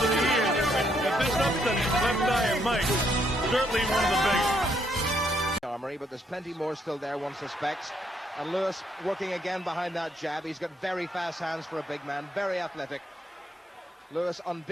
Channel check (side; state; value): both; normal; correlation 0.73